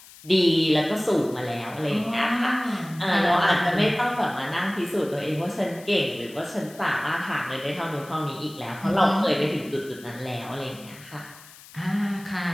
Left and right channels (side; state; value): left; noise; hiss, 21 dB below the sound